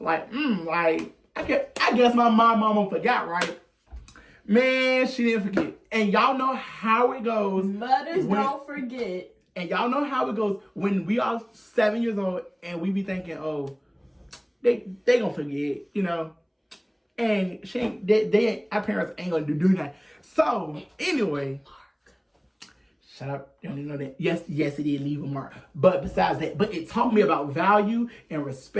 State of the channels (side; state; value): both; identical; correlation 1.00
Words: like, I guess my mama forgot, right? Man, she didn't forget. And y'all know how it goes. Mothers don't forget. And y'all know how it goes when we are 7 years old and we be thinking, oh, they gonna forget, you know. And our parents ain't gonna do that. So anyway, shut up. You don't even know that. Yes, it did leave a mark. But besides that, but it taught me about value and